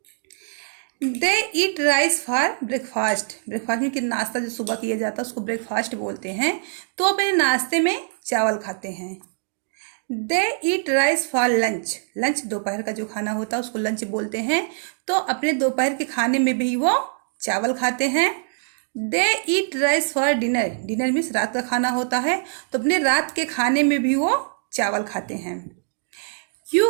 They eat rice for breakfast, breakfast में कि नाश्ता जो सुबह किया जाता है उसको ब्रेकफास्ट बोलते हैं, तो अपने नाश्ते में चावल खाते हैं। They eat rice for lunch, lunch दोपहर का जो खाना होता है उसको लंच बोलते हैं, तो अपने दोपहर के खाने में भी वो चावल खाते हैं। They eat rice for dinner, dinner means रात का खाना होता है, तो अपने रात के खाने में भी वो चावल खाते हैं। You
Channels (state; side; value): silent; left; digital silence